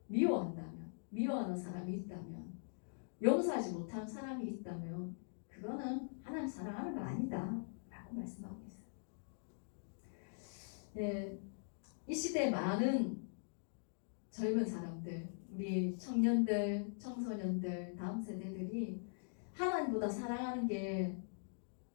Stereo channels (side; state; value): right; silent; digital silence